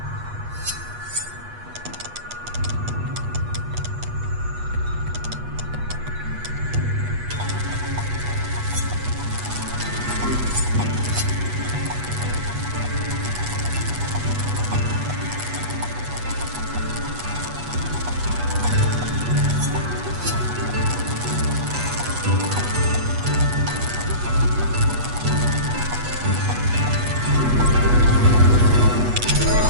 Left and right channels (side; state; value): left; late; 8.2 ms